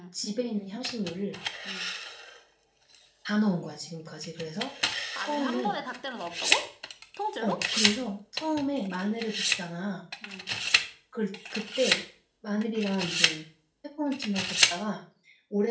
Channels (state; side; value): identical; both; correlation 1.00